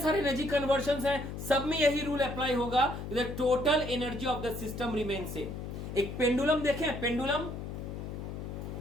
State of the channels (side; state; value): left; noise; hum, 7 dB below the sound